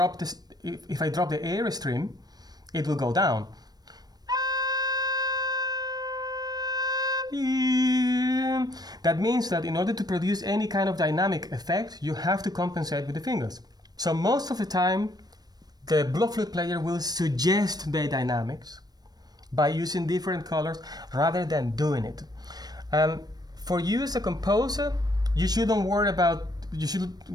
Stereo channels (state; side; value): late; left; 0.19 ms